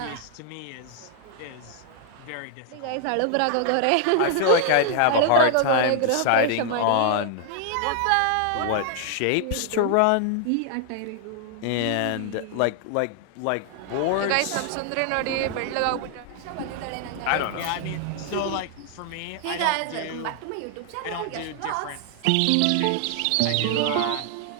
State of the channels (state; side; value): different; both; correlation 0.00